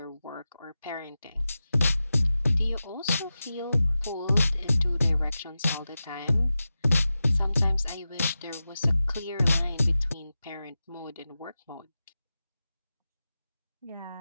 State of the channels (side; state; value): both; inverted; correlation -0.94